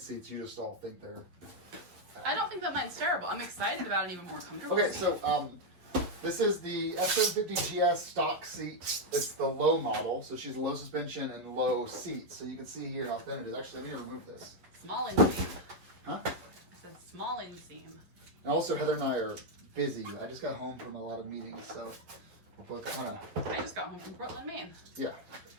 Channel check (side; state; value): left; late; 11 ms